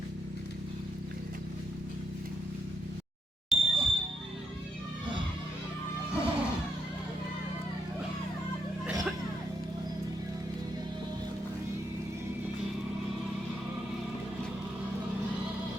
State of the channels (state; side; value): normal; both; correlation 0.79